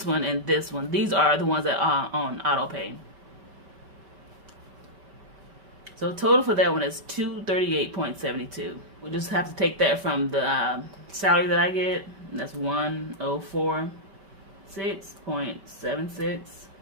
this one. These are the ones that are on auto pay. So total for that one is $238.72. We'll just have to take that from the salary that I get. And that's $104.6.76.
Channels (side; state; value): left; late; 5.2 ms